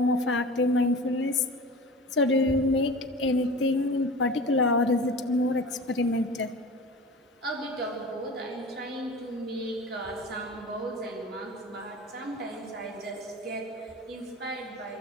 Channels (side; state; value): both; normal; correlation 0.36